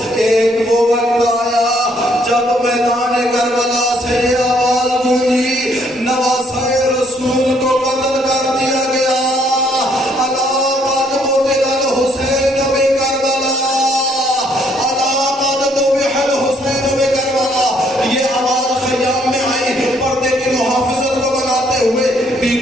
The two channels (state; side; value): normal; both; correlation 0.67